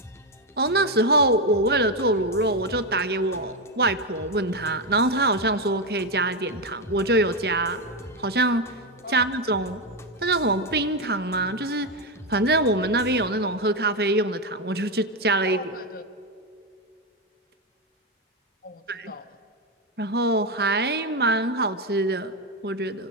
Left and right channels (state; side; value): normal; both; correlation 0.08